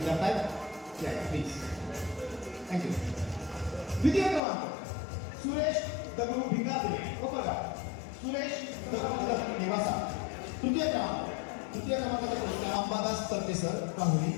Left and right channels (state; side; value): drops out; right; at 4.4 s